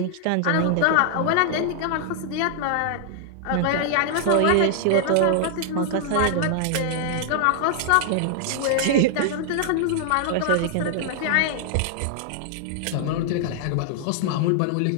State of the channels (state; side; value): different; both; correlation 0.00